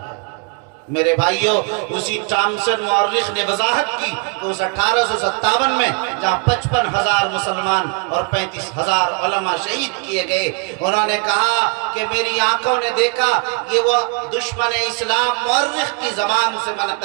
میرے بھائیوں، اسی ٹامسن مورخ نے وضاحت کی کہ اس 1857 میں جہاں 55,000 مسلمان اور 35,000 علماء شہید کیے گئے، انہوں نے کہا کہ میری آنکھوں نے دیکھا، یہ وہ دشمن اسلام مورخ کی زبان سے میں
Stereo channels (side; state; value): left; quieter; 33.5 dB